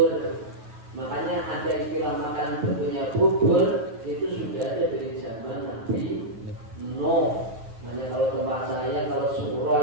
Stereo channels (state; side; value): late; left; 9.6 ms